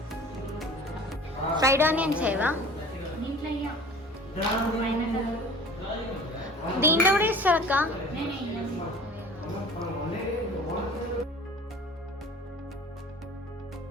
ఫ్రైడ్ ఆనియన్స్ చేయవా? దీంట్లో కూడా ఇస్తారు అక్క.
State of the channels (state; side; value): normal; both; correlation 0.43